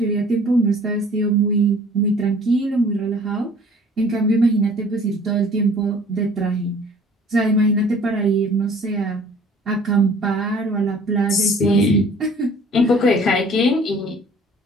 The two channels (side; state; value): both; normal; correlation 0.52